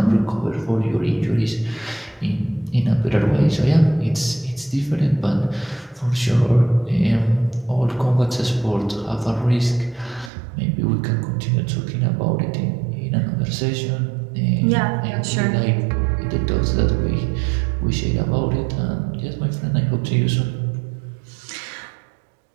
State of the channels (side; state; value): left; drops out; at 10.3 s